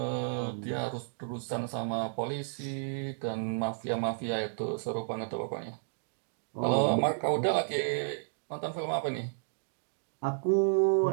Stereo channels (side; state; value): left; silent; digital silence